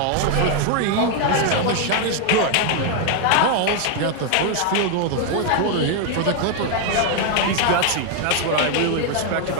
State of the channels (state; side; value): different; both; correlation 0.00